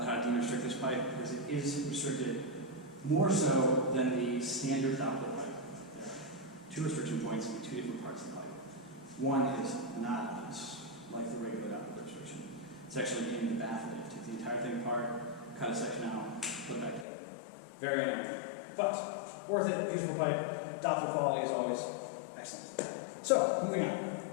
how to de-restrict this pipe, because it is restricted more so than the standard Doppler pipe. There are two restriction points in two different parts of the pipe. One is not loose, like the regular Doppler restriction. It's actually in the bath of it. Take the entire thing apart, cut a section out, put it back together. Very annoying, but worth it. Beautiful pipe. Doppler quality is always excellent. So, moving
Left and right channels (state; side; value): drops out; right; at 17.1 s